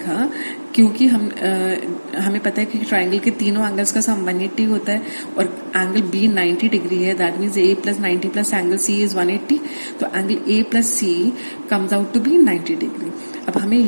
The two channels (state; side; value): inverted; both; correlation -1.00